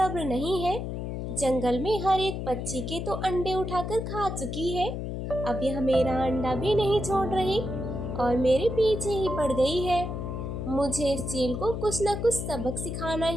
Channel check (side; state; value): left; noise; hum, 4 dB below the sound